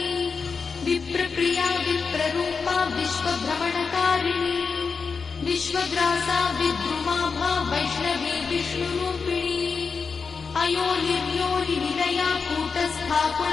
विप्रप्रिया विप्ररूपा विश्वभ्रमणकारिणी विश्वग्रासा विद्रुमाभा वैष्णवी विष्णुरूपिणी अयोनिर्योनिनिलया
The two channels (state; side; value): quieter; right; 5.2 dB